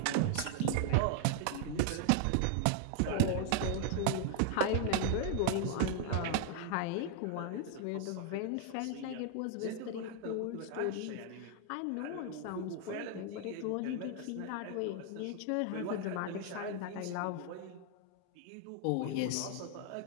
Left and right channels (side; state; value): both; different; correlation 0.00